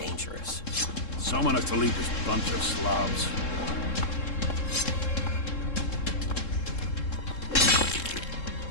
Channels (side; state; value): right; late; 3.7 ms